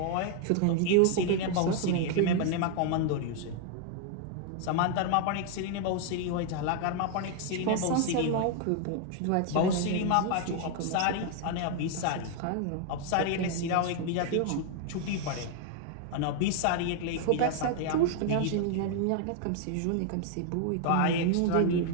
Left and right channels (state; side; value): different; both; correlation 0.00